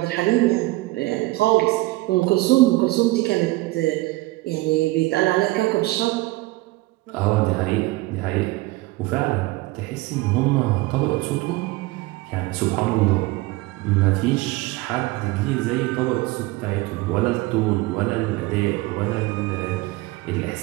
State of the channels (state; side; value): quieter; left; 20.3 dB